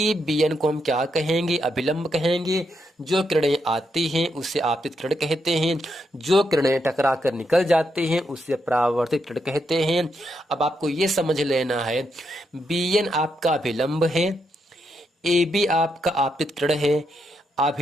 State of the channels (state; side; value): normal; both; correlation 0.81